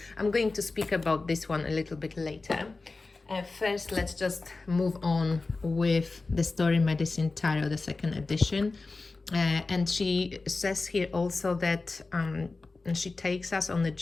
I'm going to speak about this one a little bit later. First, let's just move on with the Story Medicine Tarot, the second edition. And she says here also that she takes us on the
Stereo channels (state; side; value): quieter; right; 3.6 dB